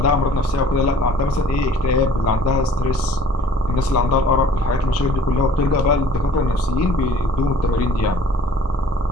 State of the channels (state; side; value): normal; both; correlation 0.53